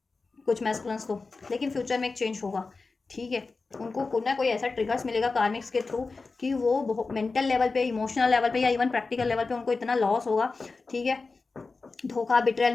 कुछ मैस्कुलिन्स को, लेकिन फ्यूचर में एक चेंज होगा, ठीक है। उनको कोई ना कोई ऐसा ट्रिगर्स मिलेगा कार्मिक्स के थ्रू कि वो मेंटल लेवल पे, इमोशनल लेवल पे, या इवन प्रैक्टिकल लेवल पे उनको इतना लॉस होगा, ठीक है, धोखा, बिट्रेयल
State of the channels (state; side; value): quieter; right; 4.0 dB